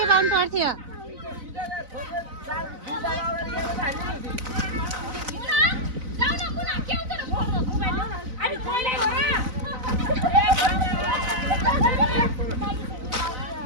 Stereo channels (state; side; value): late; left; 4.0 ms